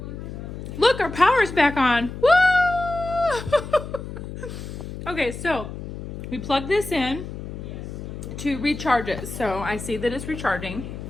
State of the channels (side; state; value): left; noise; hum, 9 dB below the sound